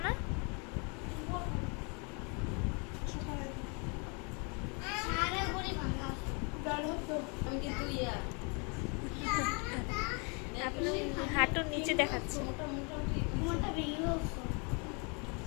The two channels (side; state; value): right; quieter; 34.1 dB